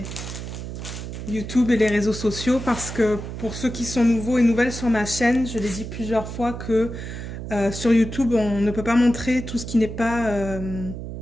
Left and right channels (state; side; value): noise; right; hum, 8 dB below the sound